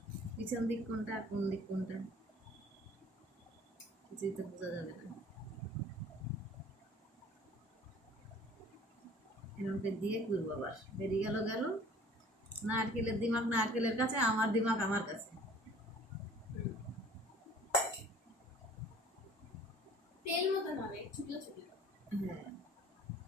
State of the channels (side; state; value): both; normal; correlation 0.50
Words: পিছন দিক কোনটা আর কোন দিক কোনটা কিছুই তো বোঝা যাবে না। এরকম করে দিয়ে করবো, আবার বেরিয়ে গেল গেল। নারকেলের দিমাগ নারকেলের কাছে, আমার দিমাগ আমার কাছে। তেল মতন হবে ছোট ছোট, হ্যাঁ,